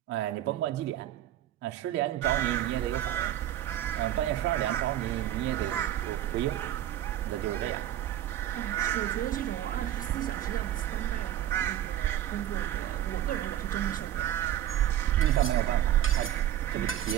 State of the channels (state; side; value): quieter; left; 12.2 dB